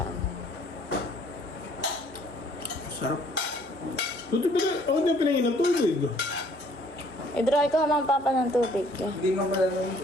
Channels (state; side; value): normal; both; correlation 0.59